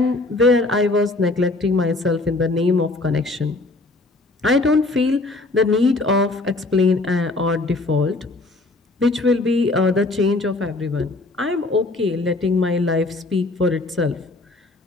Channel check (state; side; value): quieter; right; 3.1 dB